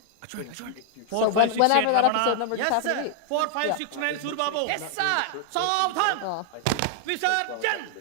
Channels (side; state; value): both; different; correlation 0.00